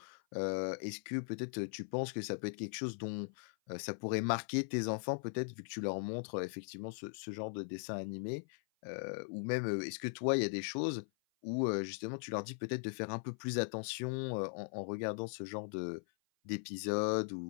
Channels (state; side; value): silent; right; 51 dB below the other